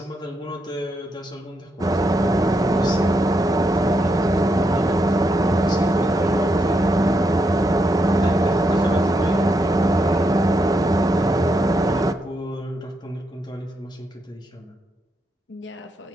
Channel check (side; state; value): both; normal; correlation 0.80